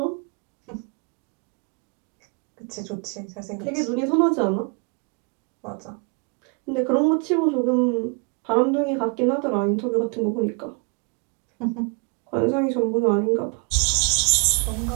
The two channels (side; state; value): left; quieter; 34.7 dB